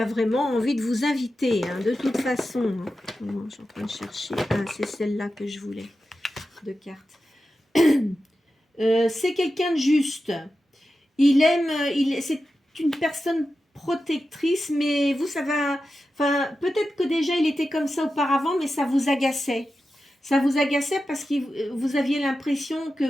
vraiment envie de vous inviter, hein, de toute façon. Hein. Je suis en train de chercher. Ah, c'est celle-là que je voulais, de cartes. C'est quelqu'un de juste. C'est une personne protectrice, mais vous, ça va... Enfin, peut-être que déjà, il était comme ça auparavant, mais ça vous agaçait. Ça vous agaçait parce que vous aviez l'impression que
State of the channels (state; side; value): normal; both; correlation 0.91